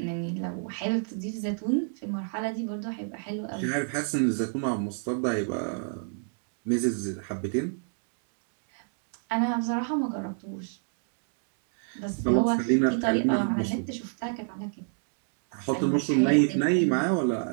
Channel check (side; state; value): left; silent; digital silence